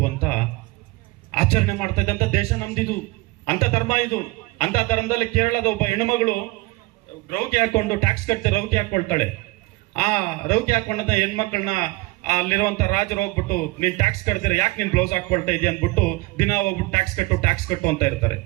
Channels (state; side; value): quieter; left; 22.5 dB